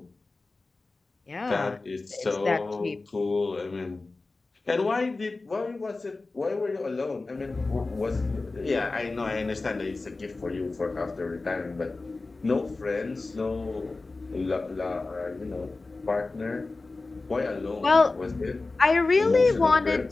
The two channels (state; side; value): quieter; right; 3.5 dB